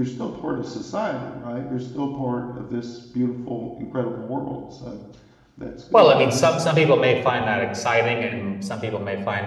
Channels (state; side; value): identical; both; correlation 1.00